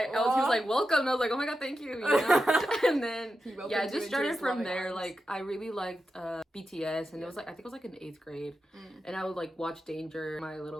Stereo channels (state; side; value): normal; both; correlation 0.90